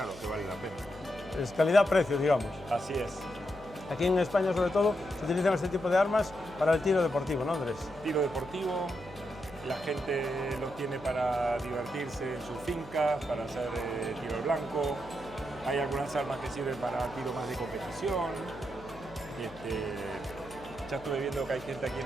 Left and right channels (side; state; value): left; noise; hum, 19 dB below the sound